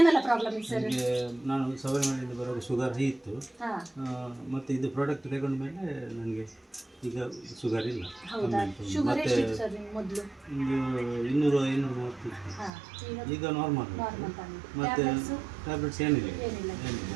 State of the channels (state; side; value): drops out; left; at 12.7 s